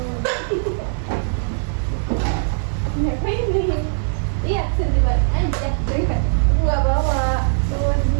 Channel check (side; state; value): left; silent; 63 dB below the other